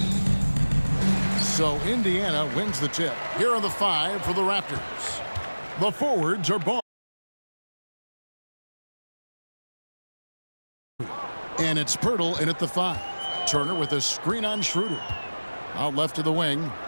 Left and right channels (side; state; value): both; inverted; correlation -1.00